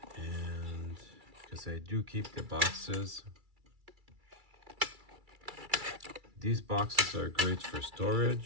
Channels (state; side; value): late; left; 2.3 ms